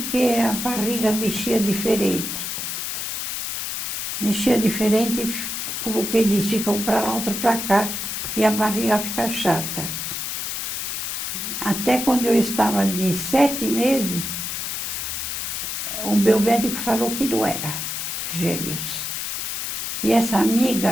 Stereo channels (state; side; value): noise; left; hiss, 3 dB below the sound